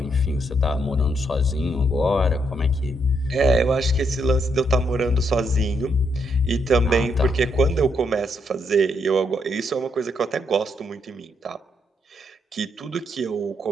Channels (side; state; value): both; normal; correlation 0.76